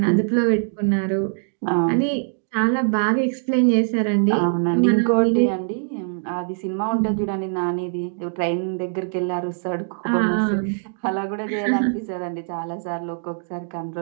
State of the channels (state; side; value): silent; left; digital silence